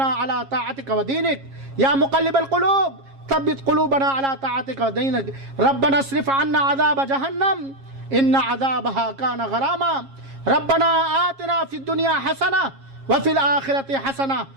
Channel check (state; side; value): late; left; 7.4 ms